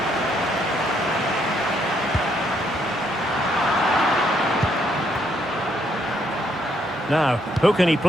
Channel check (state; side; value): normal; both; correlation 0.72